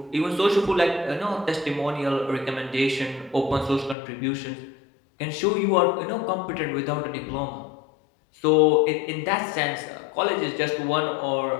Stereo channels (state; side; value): drops out; right; at 4.0 s